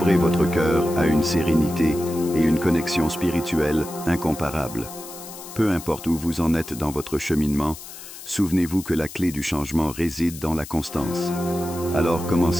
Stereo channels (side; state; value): left; noise; hiss, 14 dB below the sound